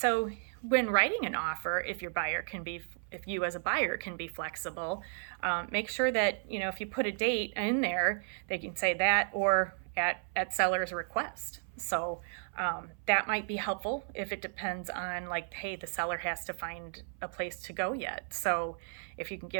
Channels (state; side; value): silent; left; 55 dB below the other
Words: when writing an offer, if you as a buyer can be flexible, make sure that, if you put a date in there, they can say that or at seller's request. So that might be helpful if it depends on hey, the seller has to find a place to go yet. So if you can